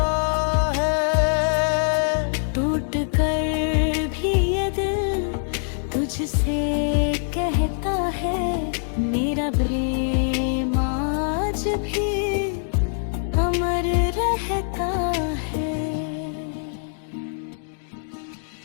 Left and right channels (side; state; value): right; silent; digital silence